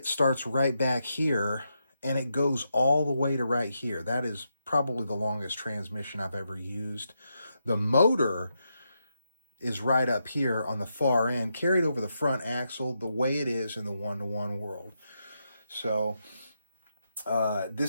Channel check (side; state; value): both; inverted; correlation -0.84